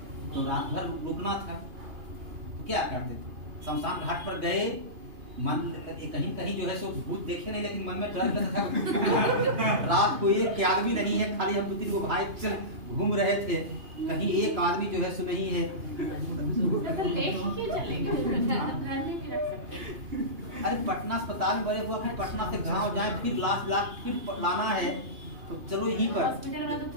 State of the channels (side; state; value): left; late; 2.8 ms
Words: तो रात भर रुकना था, तो क्या करते थे, शमशान घाट पर गए, मन कहीं कहीं जो है सो भूत देखे नहीं, लेकिन मन में डर लगता था। रात को एक आदमी नहीं है, खाली हम 2-3 भाई चल घूम रहे थे, कहीं एक आदमी जो है सो नहीं है। तो लेके क्यों चलेगा, घर में भी रख सकते हैं। अरे पटना अस्पताल में बड़े हुआ, फिर पटना से गाँव जाए, फिर लाश फिर लाना है, तो चलो यहीं पर, हॉस्पिटल में तो